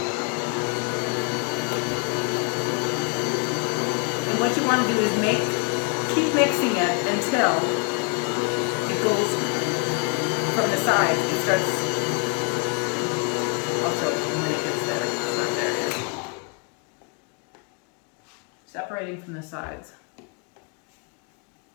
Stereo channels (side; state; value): right; quieter; 34.2 dB